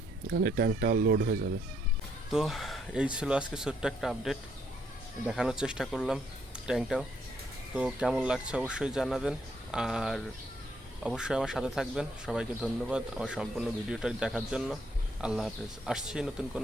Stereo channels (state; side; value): normal; both; correlation 0.71